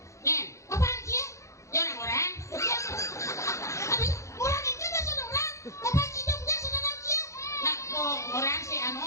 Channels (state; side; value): late; right; 0.15 ms